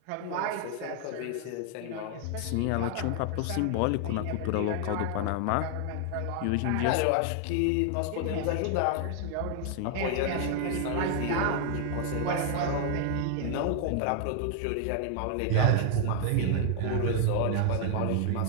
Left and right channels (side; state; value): both; different; correlation 0.00